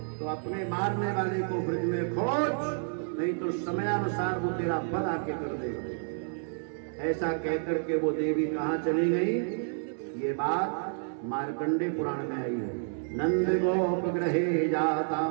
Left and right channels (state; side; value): silent; left; 58 dB below the other